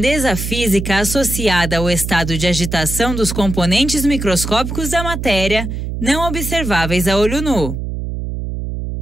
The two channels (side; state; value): right; noise; hum, 5 dB below the sound